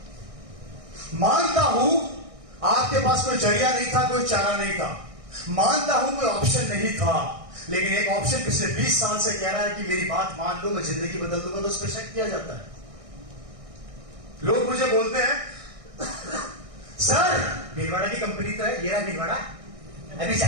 मानता हूं आपके पास कोई जरिया नहीं था, कोई चारा नहीं था, मानता हूं कोई ऑप्शन नहीं था, लेकिन एक ऑप्शन पिछले 20 साल से कह रहा है कि मेरी बात मान लो, मैं जिंदगी बदल दूंगा, तो उस पर शक किया जाता है। लोग मुझे बोलते हैं सर भीलवाड़ा की कंपनी तो है, ये रहा भीलवाड़ा, अभी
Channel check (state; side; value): late; left; 1.6 ms